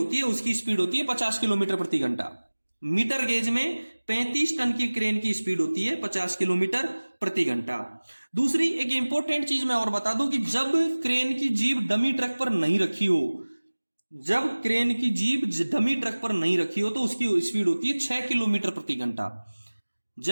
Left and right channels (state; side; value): inverted; both; correlation -1.00